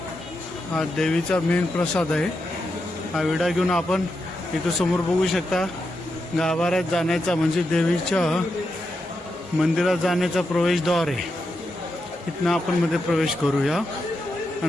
हा देवीचा मेन प्रसाद आहे. हा विडा घेऊन आपण इथं समोर बघू शकता गाभाऱ्यात जाण्याचा म्हणजे देवीच्या मंदिरात जाण्याचा प्रवेशद्वार आहे. इथनं आपण मध्ये प्रवेश करूया.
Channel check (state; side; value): normal; both; correlation 0.86